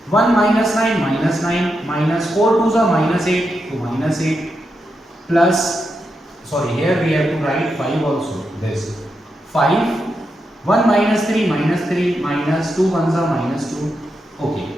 1 minus 9 minus 4 2s are minus 8 to minus 8 plus, sorry, here we have to write 5 also. This 5. 1 minus 3 minus 2 1s are minus 2. Okay,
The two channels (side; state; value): both; normal; correlation 0.85